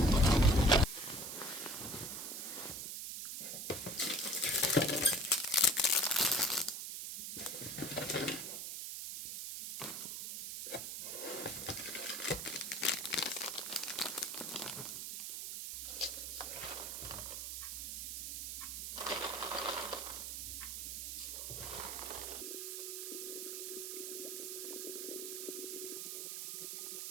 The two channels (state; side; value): noise; right; hiss, 5 dB below the sound